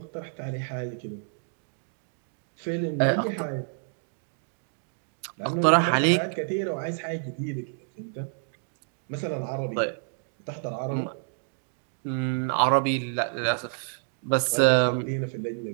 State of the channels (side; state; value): left; silent; digital silence